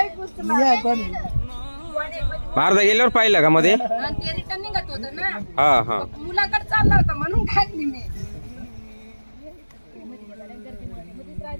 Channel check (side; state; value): both; inverted; correlation -1.00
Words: अर्धा गेल्यावर पाहिलं का मध्ये? ते रिटर्न निघत होत ना. हा हा. मुलाकडे चालला होता म्हणून खाल्ली मी.